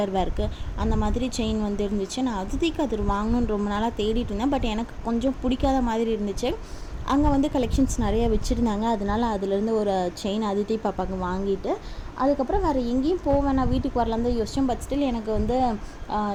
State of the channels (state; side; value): identical; both; correlation 1.00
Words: வேர்க்கு அந்த மாதிரி செயின் இருந்துச்சு. நான் அதிதிக்கு அது வாங்கணுன்னு ரொம்ப நாளாக தேடிட்டு இருந்தேன். பட் எனக்கு கொஞ்சம் பிடிக்காத மாதிரி இருந்துச்சு. அங்கே கலெக்ஷன்ஸ் நிறைய வச்சுருந்தாங்க. அதனால அதுலேருந்து ஒரு செயின் அதிதி பாப்பாவுக்கு வாங்கிட்டு அதுக்கப்புறம் வேறு எங்கேயும் போவேன், நான் வீட்டுக்கு வரலாம் தான் யோசித்தேன். பட் ஸ்டில் எனக்கு